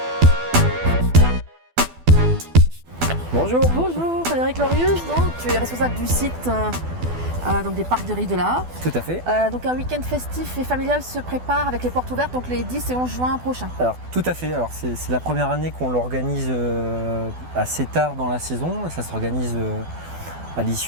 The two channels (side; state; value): left; late; 12 ms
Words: Bonjour. Bonjour Frédéric Lorius, donc, tu es responsable du site donc des parcs des Rives de la Haye. Tout à fait. Donc un week-end festif et familial se prépare avec les portes ouvertes donc les 10 et 11 juin prochains. Alors tout à fait. Alors c'est la première année qu'on l'organise assez tard dans la saison. Ça s'organise à